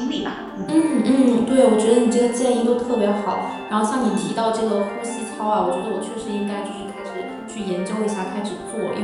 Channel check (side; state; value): both; identical; correlation 1.00